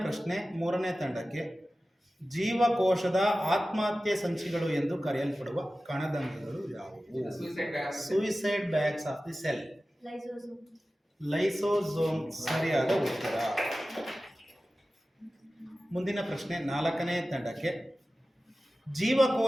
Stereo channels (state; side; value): normal; both; correlation 0.95